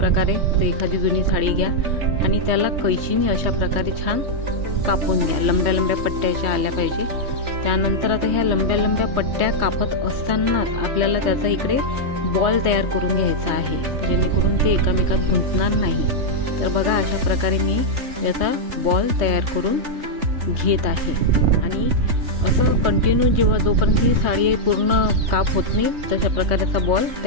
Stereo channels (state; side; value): late; left; 3.2 ms